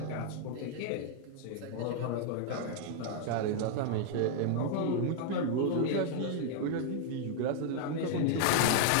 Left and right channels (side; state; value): both; different; correlation 0.00